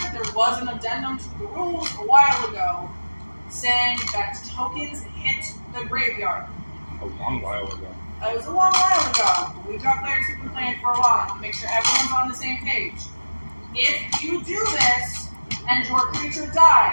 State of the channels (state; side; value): inverted; both; correlation -1.00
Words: There was an addendum to the rules a while ago saying that tokens hit the graveyard. A long while ago. It was a long while ago. We've got players who've been playing for a while. Make sure everyone's on the same page. If you do this and your creature